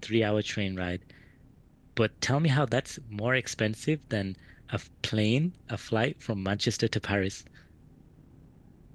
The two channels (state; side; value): identical; both; correlation 1.00